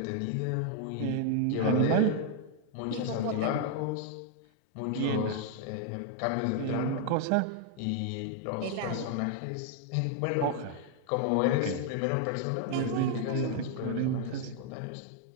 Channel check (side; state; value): both; different; correlation 0.00